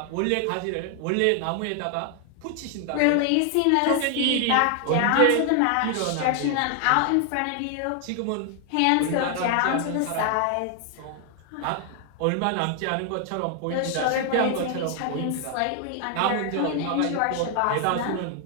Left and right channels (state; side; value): different; both; correlation 0.00